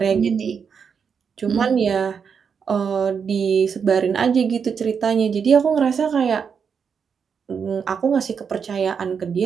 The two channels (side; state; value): left; quieter; 6.5 dB